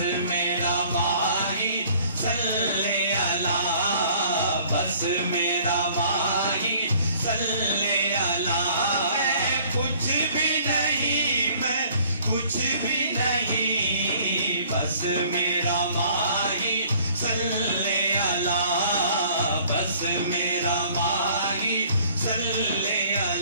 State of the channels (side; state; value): both; inverted; correlation -0.56